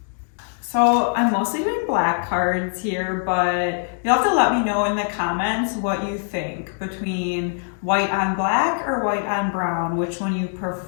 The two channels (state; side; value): silent; right; digital silence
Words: So I'm mostly doing black cards here, but you'll have to let me know in the comments what you think between white on black or white on brown, which one you